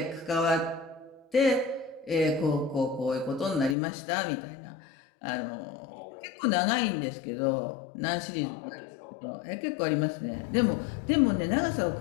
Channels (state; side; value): drops out; right; at 3.8 s